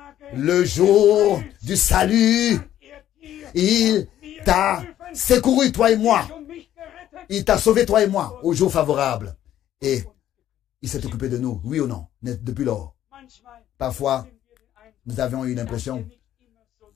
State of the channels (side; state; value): right; quieter; 11.9 dB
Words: Le jour du salut, il t'a secouru, toi et moi. Il t'a sauvé, toi et moi, au jour favorable. Et il s'est occupé de nous, oui ou non, depuis lors. Parfois, nous avions eu l'impression